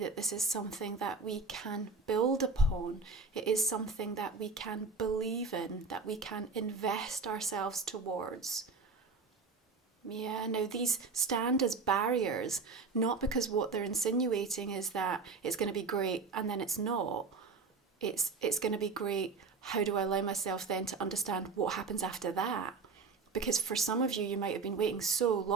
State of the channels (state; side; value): quieter; left; 4.4 dB